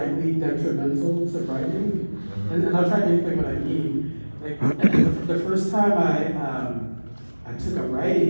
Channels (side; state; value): both; inverted; correlation -1.00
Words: detrimental to writing. And I'll try to explain what I mean. Like the first time I took a